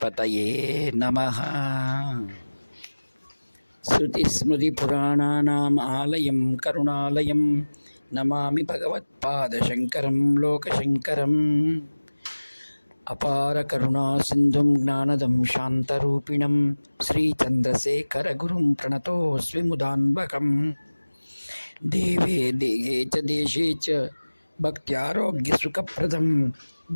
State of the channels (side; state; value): both; inverted; correlation -1.00